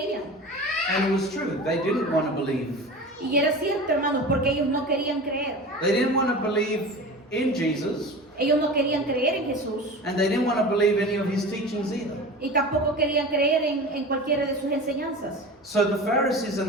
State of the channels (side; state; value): both; normal; correlation 0.33